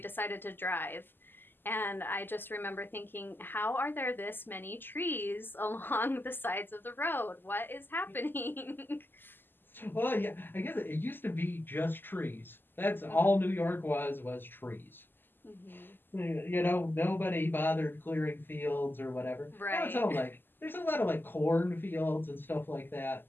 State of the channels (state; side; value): late; right; 0.094 ms